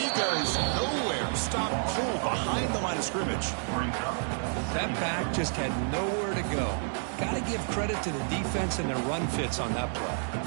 goes nowhere. Stop cold behind the line of scrimmage. That back just had nowhere to go. Got to give credit to the defense and their run fits on that play.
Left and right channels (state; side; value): silent; left; 58 dB below the other